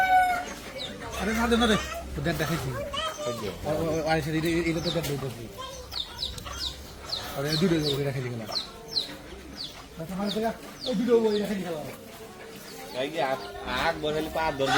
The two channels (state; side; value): identical; both; correlation 1.00